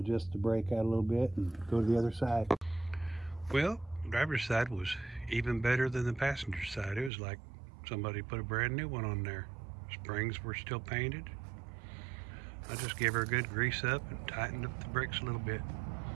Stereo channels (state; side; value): drops out; left; at 7.1 s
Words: the brake out a little bit and go to the other side. Well, driver's side was even better than the passenger side. It was like somebody put a brand new one on there. Springs were still painted. I just gave her a good grease up and tightened up the brakes a little bit.